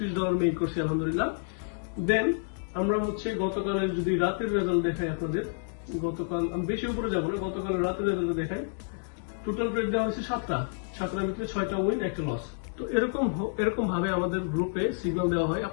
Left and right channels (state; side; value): silent; right; digital silence